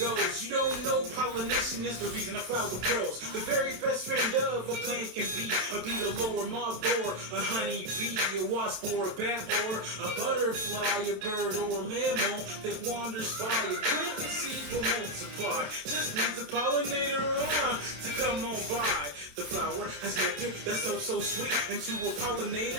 You don't know pollination is the reason a flower grows. The very best friend of a plant can be a beetle or a moth or a honey bee, a wasp or a bat or a butterfly, a bird or a mammal that wanders by. A plant and seeds will multiply. Just needs a pollinator to come on by. The flower has nectar that's so sweet, and to a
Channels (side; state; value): left; late; 27 ms